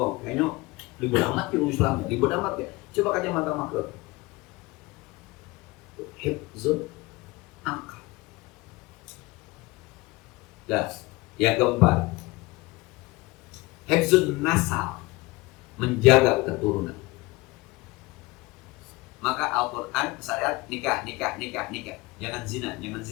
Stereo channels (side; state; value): right; quieter; 22.2 dB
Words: Kayaknya ribet amat ya Islam. Ribet amat ya. Coba kacamata makro. Hifzul akal. Nah, yang keempat, hifzul nasal, menjaga keturunan. Maka Al-Quran syariat nikah. Jangan zina.